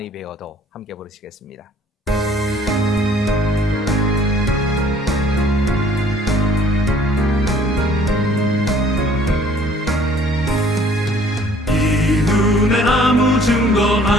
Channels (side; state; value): both; normal; correlation 0.57